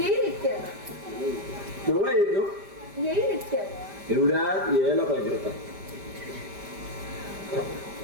इतक्यात. केव्हा येतो? येईल इतक्यात. एवढ्यात यायला पाहिजे होता.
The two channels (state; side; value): late; left; 5.1 ms